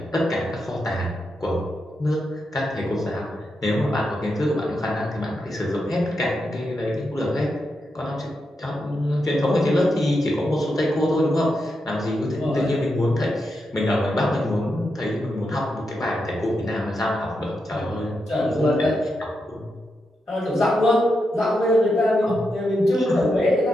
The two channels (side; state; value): both; normal; correlation 0.85